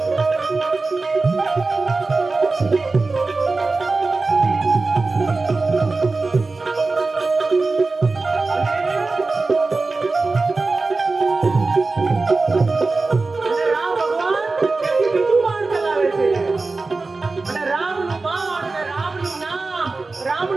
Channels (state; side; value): quieter; left; 3.7 dB